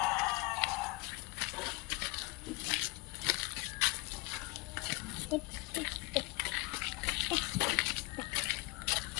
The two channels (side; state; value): right; quieter; 24.6 dB